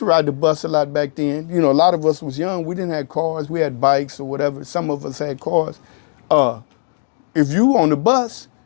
ride the bus a lot back then. You know, a lot of us was young. We didn't have cars. We had bikes or whatever. Some of us had cars. If you on the bus,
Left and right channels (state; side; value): silent; right; 67 dB below the other